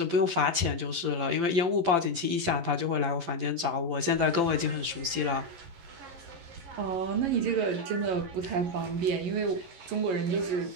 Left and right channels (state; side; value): late; left; 11 ms